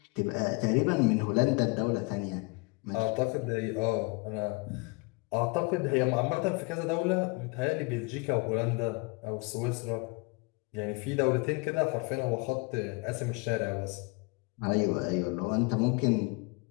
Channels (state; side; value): quieter; right; 28.4 dB